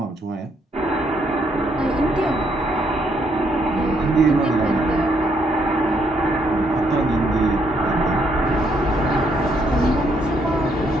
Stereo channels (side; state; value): both; normal; correlation 0.72